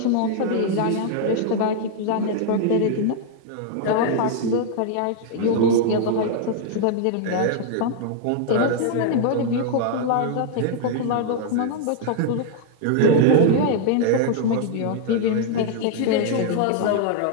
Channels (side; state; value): both; different; correlation 0.00